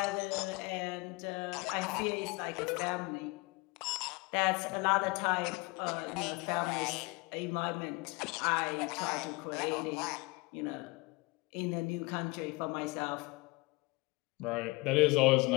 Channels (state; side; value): quieter; right; 25.3 dB